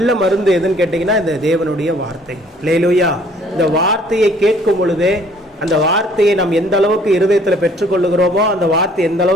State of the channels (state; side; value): normal; both; correlation 0.58